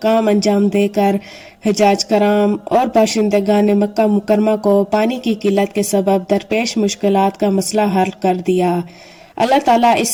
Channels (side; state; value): both; identical; correlation 1.00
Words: انجام دے کر حجاج کرام اور باشندگان مکہ مکرمہ کو پانی کی قلت کے سبب درپیش مشکلات کا مسئلہ حل کر دیا۔ اللہ تعالیٰ